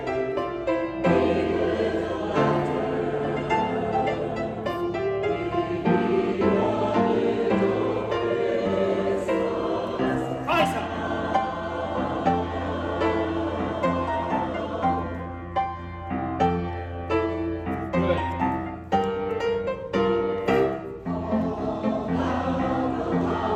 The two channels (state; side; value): identical; both; correlation 1.00